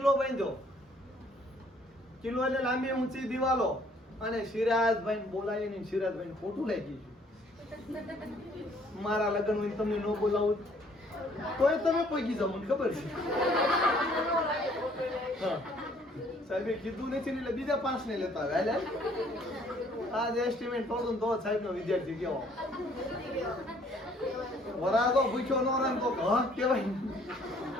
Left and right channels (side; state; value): both; normal; correlation 0.61